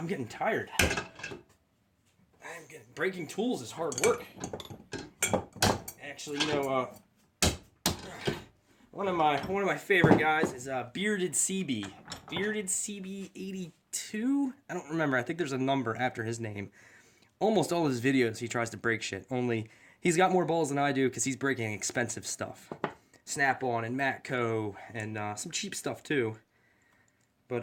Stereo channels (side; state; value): both; identical; correlation 1.00